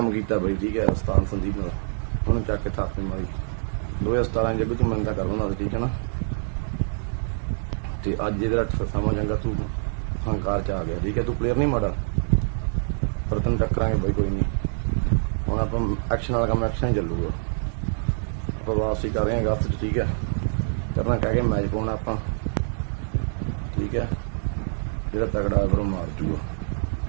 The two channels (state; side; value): silent; left; 59 dB below the other